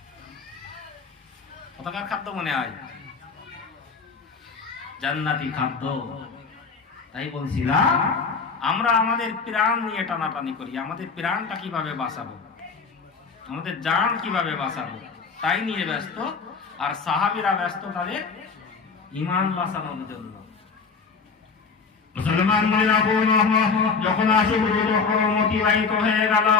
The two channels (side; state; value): right; quieter; 5.1 dB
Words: কোথাকার খাদ্য মনে হয়? জান্নাতি খাদ্য। তাই বলছিলাম আমরা আমাদের প্রাণ নিয়ে টানাটানি করি, আমাদের প্রাণটা কিভাবে বাঁচাবো, আমাদের জান কিভাবে বাঁচাবো, তাই নিয়ে ব্যস্ত। আর সাহাবীরা ব্যস্ত তাদের ঈমান বাঁচানোর জন্য। মুসলমানরা যখন আশুরুল হরম অতিবাহিত হয়ে গেল,